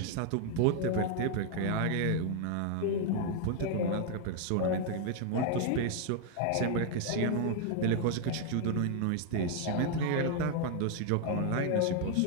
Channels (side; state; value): both; different; correlation 0.00